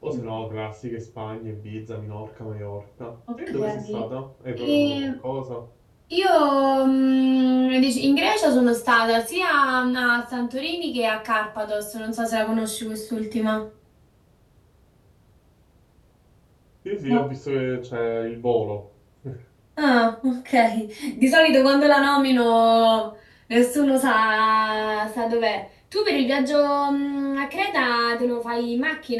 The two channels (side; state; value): both; identical; correlation 1.00